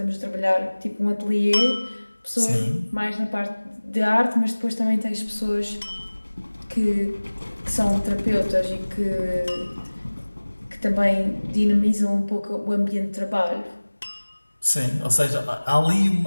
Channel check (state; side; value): inverted; both; correlation -1.00